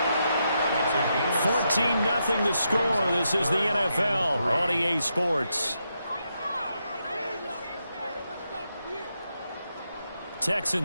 3. 14-0 the score. This is the NFL on EA Sports.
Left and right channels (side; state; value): both; inverted; correlation -0.83